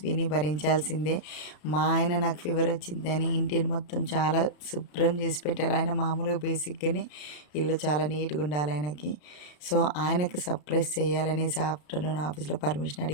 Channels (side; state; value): right; late; 33 ms